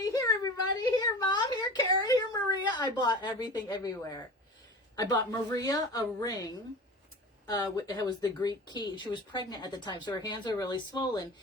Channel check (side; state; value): both; normal; correlation 0.34